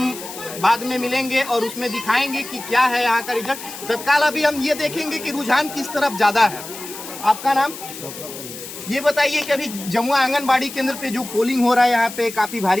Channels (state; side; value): noise; left; hiss, 12 dB below the sound